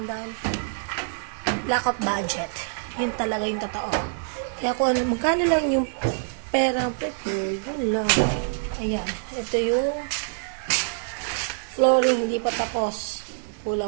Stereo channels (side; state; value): left; silent; 61 dB below the other